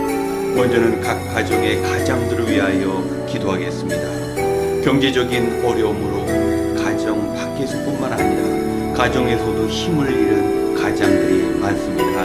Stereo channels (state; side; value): identical; both; correlation 1.00